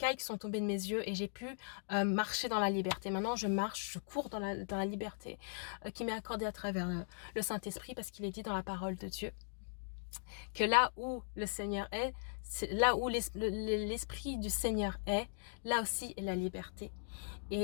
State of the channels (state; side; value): silent; right; digital silence